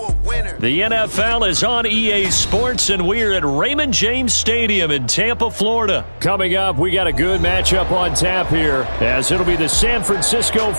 winner? The NFL is on EA Sports, and we're at Raymond James Stadium in Tampa, Florida. Coming up, we got a good matchup on tap here, as it'll be the San Francisco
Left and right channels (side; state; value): both; inverted; correlation -1.00